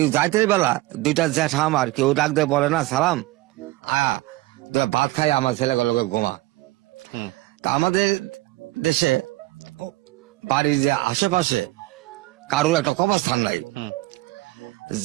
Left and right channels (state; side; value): quieter; left; 19.2 dB